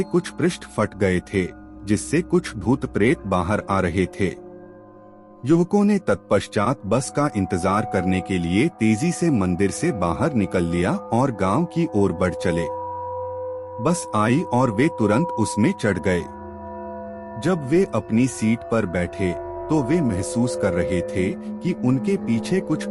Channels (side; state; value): both; identical; correlation 1.00